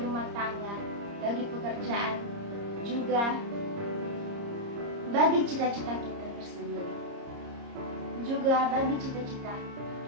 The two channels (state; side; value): late; left; 30 ms